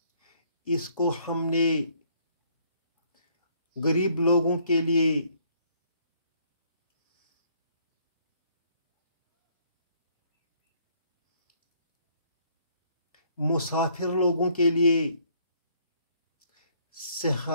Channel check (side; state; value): both; inverted; correlation -0.65